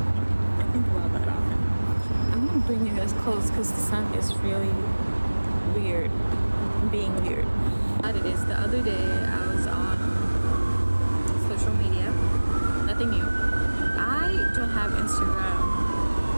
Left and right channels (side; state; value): both; inverted; correlation -1.00